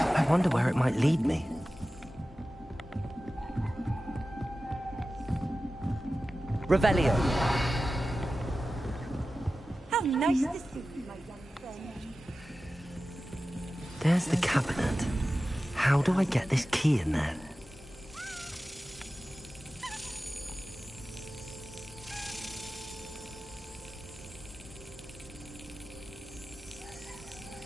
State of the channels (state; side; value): normal; both; correlation 0.95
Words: I wonder where it might lead me. Revelio. How nice to see you, my young friend. There's the cabinet. How do I get this key in there?